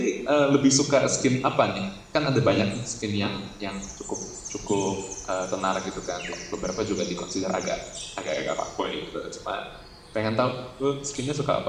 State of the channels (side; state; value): both; identical; correlation 1.00